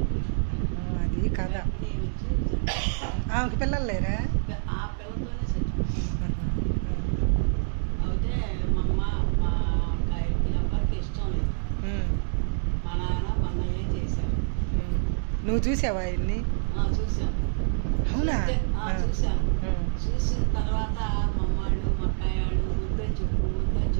అది కదా. ఆమెకి పిల్లలు లేరా? ఆ పిల్లతోనే అయితే మా అమ్మ మా ఎవరికి ఇష్టం లేదు. మా నాన్న మా అన్నయ్య చేశారు. నువ్వు చూసావా ఆయన్ని? చూసాను. అవునా? చూసాను. చూసిన తర్వాత మా అమ్మాళ్ళు మా అక్కయ్యాళ్ళు వద్దని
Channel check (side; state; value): left; silent; digital silence